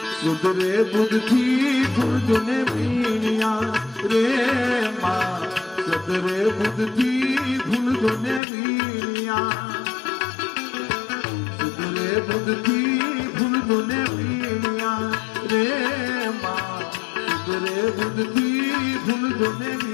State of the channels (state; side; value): drops out; right; at 8.4 s